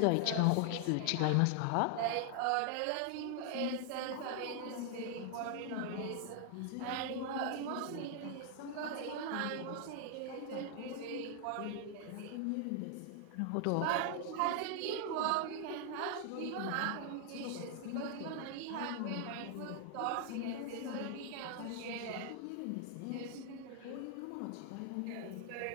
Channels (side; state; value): both; different; correlation 0.00